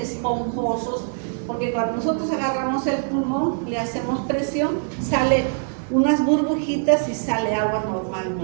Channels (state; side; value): silent; left; 63 dB below the other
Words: porque cuando nosotros agarramos el pulmón, le hacemos presión, sale unas burbujitas y sale agua